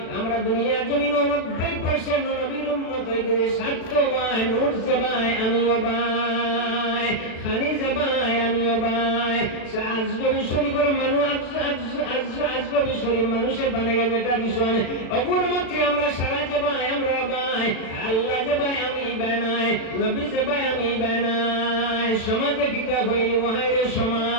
আমরা দুনিয়ার জমিন 90% নবীর উম্মত হয়ে গেছে, স্বার্থ ভাই নুরছে ভাই আমিও ভাই, খানিজে ভাই আমিও ভাই, আজগবি শরীফের মানুষ আজগবি শরীফ মানুষের বানাইয়া যেটা বিষয় অপর মতে আমরা সারা যে ভাই আমরা ভাই, আল্লাহ যে ভাই আমি বানাই, নবী যে ভাই আমি বানাই, সমাজে কিতা হইলি মহাইরে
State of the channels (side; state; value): right; late; 36 ms